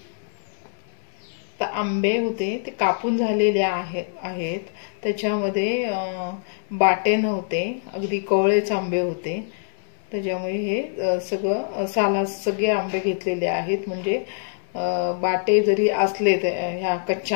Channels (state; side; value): silent; right; 62 dB below the other